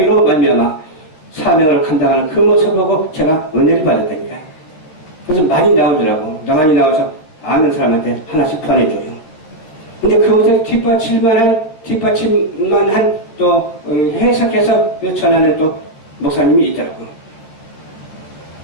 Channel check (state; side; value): late; right; 13 ms